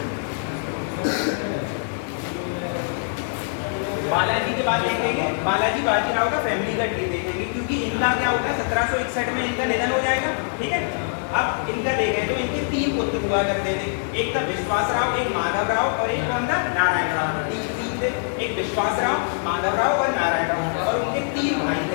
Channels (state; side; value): silent; right; digital silence